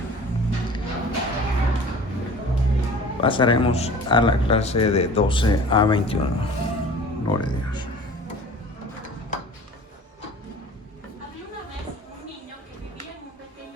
Pasaremos a la clase de 12 a 21. Gloria a Dios. Había una vez un niño que vivía en un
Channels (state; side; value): normal; both; correlation 0.43